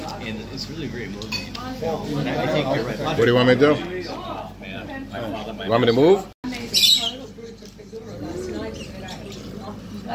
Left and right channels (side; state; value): both; identical; correlation 1.00